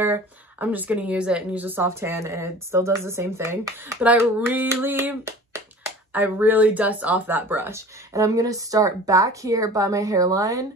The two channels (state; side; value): normal; both; correlation 0.42